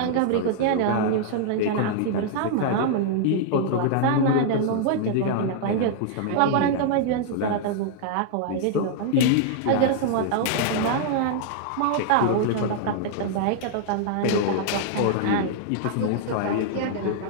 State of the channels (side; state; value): both; different; correlation -0.01